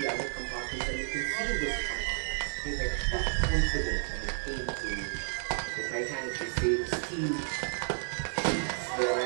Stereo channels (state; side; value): silent; left; digital silence